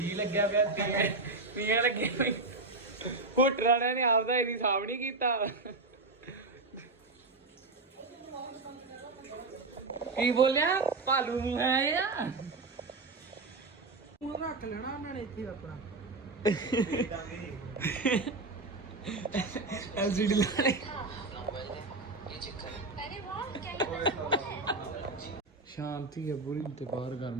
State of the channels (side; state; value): left; quieter; 3.3 dB